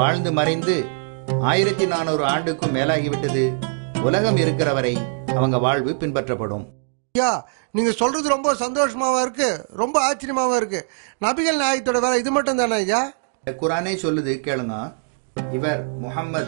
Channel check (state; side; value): silent; left; digital silence